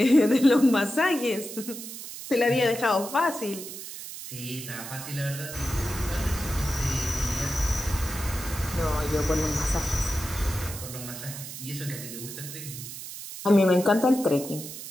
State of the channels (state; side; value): noise; right; hiss, 10 dB below the sound